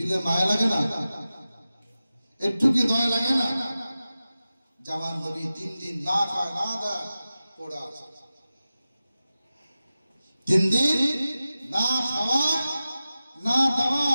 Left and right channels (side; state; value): both; inverted; correlation -0.94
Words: মায়া লাগে না? একটু কি দয়া লাগে না? জামান নবী 3 দিন না খায় না দেয় পড়ে আছে, 3 দিন না খাওয়ায় না